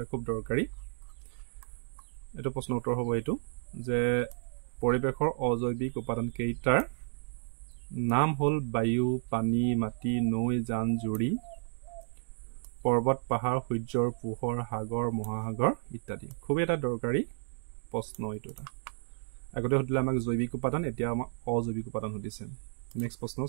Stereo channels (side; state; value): left; silent; digital silence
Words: খুব দৰকাৰী এইটো প্ৰশ্নৰ উত্তৰ হ'ব এইটো যে পৰিৱেশৰ অজৈৱিক উপাদান কেইটাৰ নাম হ'ল বায়ু পানী মাটি নৈ জান জুৰি পৰ্বত পাহাৰ সূৰ্যৰ পোহৰ সাগৰ মহাসাগৰ ইত্যাদি খুব এটা দৰকাৰী প্ৰশ্ন এইটো এটা আগতে সুধিলে আমাক জৈৱিক উপাদান এতিয়া আমাক অজৈৱিক উপাদান সুধিছে নেক্সট প্ৰশ্ন